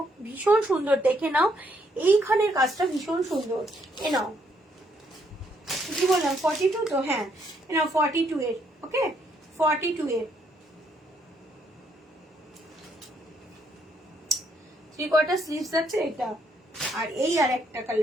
ভীষণ সুন্দর, দেখে নাও, এইখানের কাজটা ভীষণ সুন্দর। এ নাও, কি বললাম 42 তো, হ্যাঁ এ নাও 42 এর, ওকে 42 এর 3/4 স্লিভস আছে এটা। আর এই আর একটা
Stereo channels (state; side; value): normal; both; correlation 0.72